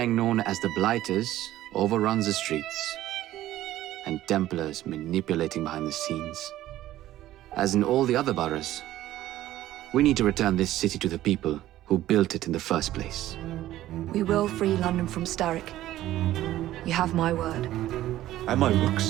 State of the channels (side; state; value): left; quieter; 14.2 dB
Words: known as the Blighters overruns the streets, and Templars manipulating behind the scenes. As in all the other boroughs, we need to return this city to the people who built it in the first place. We will free London from Starrick. You have my word. And my